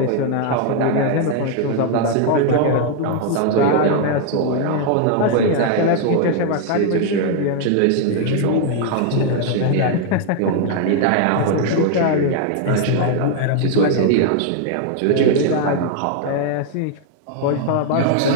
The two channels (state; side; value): different; both; correlation 0.00